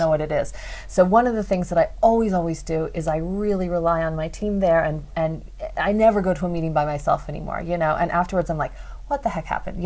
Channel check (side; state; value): both; identical; correlation 1.00